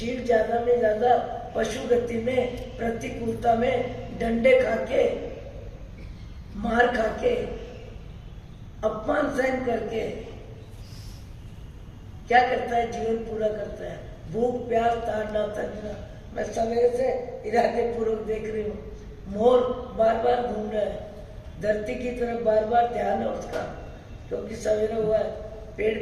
ज्यादा में ज्यादा पशु गति में, प्रतिकूलता में, डंडे खाके, मार खाके, अपमान सहन करके क्या करता है? जीवन पूरा करता है। भूख प्यास ताड़ना तंजना। मैं सवेरे से इरादे पूर्वक देख रही हूँ, मोर बार बार घूम रहा है, धरती की तरफ बार बार ध्यान है उसका, क्योंकि सवेरे हुआ है, पेड़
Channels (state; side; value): identical; both; correlation 1.00